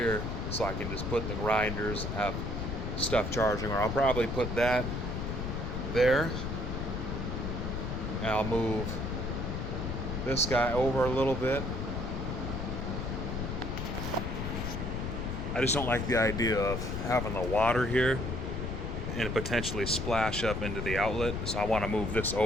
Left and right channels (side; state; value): left; noise; rumble, 3 dB below the sound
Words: so I can just put the grinders and have stuff charging, or I'll probably put that there, and I'll move this guy over a little bit. I just don't like the idea of having the water here and potentially splash up into the outlet, so I want to move this